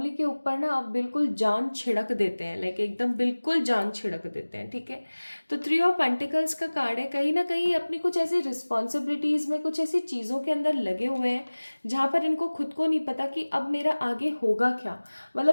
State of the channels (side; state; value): both; inverted; correlation -1.00